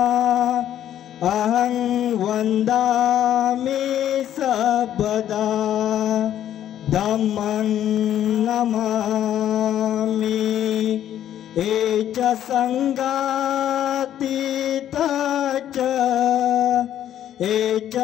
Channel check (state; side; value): quieter; right; 11.1 dB